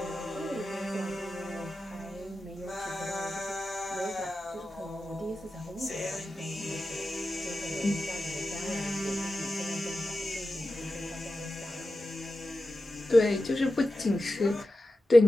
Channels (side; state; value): both; normal; correlation 0.93